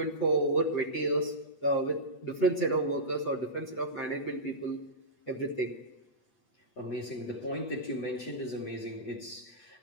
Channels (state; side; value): late; right; 8.4 ms